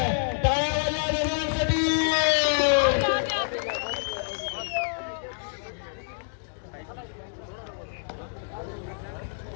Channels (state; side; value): silent; right; digital silence